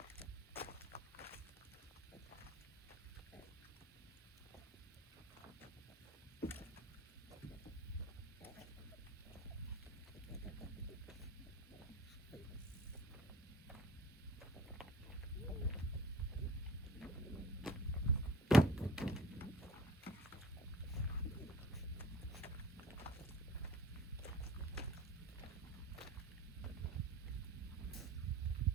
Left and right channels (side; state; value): both; normal; correlation 0.46